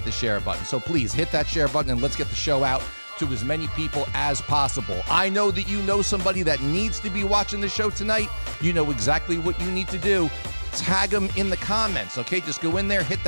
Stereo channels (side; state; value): both; inverted; correlation -1.00